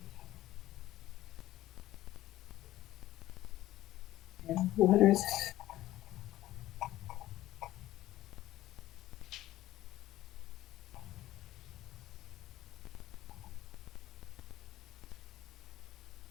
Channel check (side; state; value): right; quieter; 15.0 dB